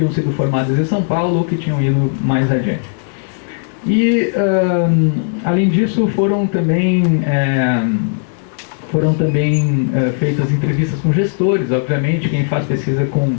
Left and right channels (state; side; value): silent; right; digital silence